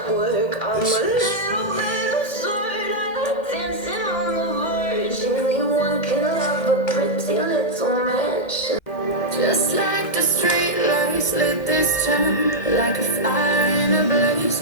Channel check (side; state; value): right; late; 2.1 ms